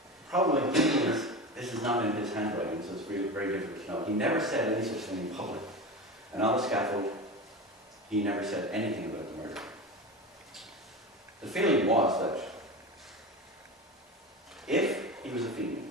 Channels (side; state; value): both; normal; correlation 0.26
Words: problem with him is, this is not in his handwriting, so it's very, very difficult to know. He never said any such thing in public. And on the scaffold, he never said anything about the murder. The feeling was that if he was a Fenian,